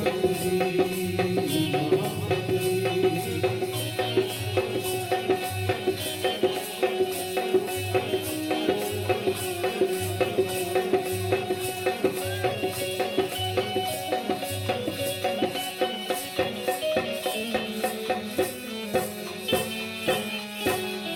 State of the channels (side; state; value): both; identical; correlation 1.00